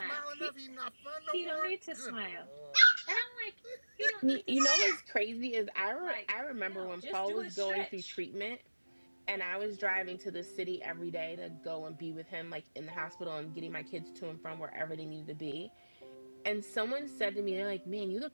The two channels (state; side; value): inverted; both; correlation -1.00